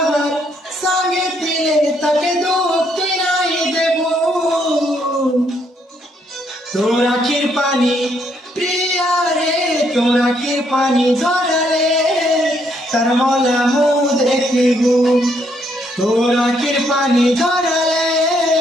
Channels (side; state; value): both; normal; correlation 0.72